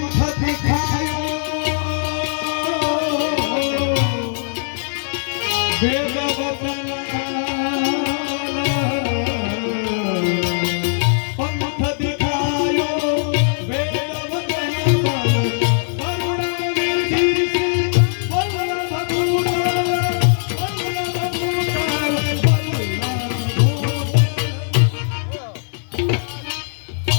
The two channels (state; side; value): silent; right; 66 dB below the other